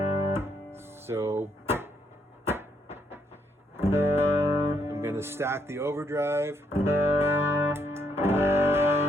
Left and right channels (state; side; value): normal; both; correlation 0.73